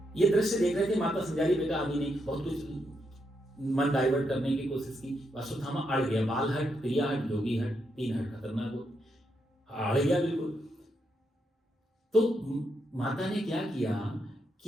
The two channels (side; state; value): both; normal; correlation 0.80